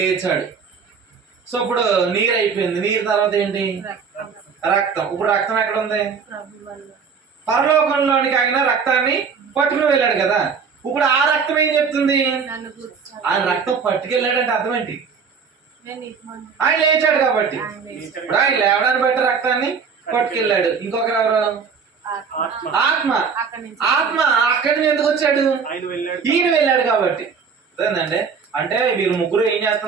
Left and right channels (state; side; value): quieter; left; 6.0 dB